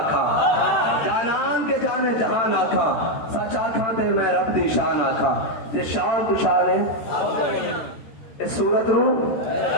جانان کے جانے جہان آکھا سچ آکھاں تے میں رب دی شان آکھا. یہ شان تو شان ہے اس صورت نو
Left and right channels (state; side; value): late; right; 13 ms